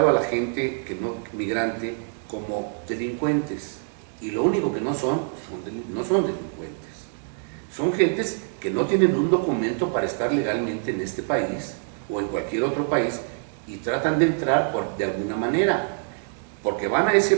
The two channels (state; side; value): silent; left; 62 dB below the other